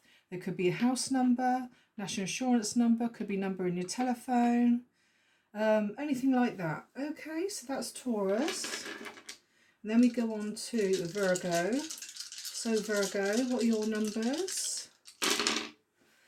there could be a house number, national insurance number, could be number in your telephone, anything like that. Okay, so that's Taurus. And then we go on to Virgo. So Virgo, what are your numbers?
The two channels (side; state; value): both; identical; correlation 1.00